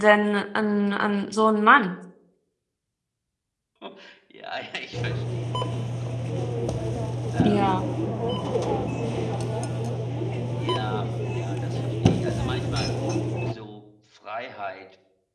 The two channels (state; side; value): identical; both; correlation 1.00